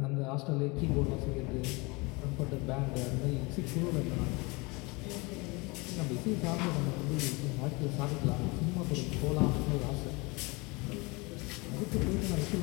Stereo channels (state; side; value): quieter; right; 26.6 dB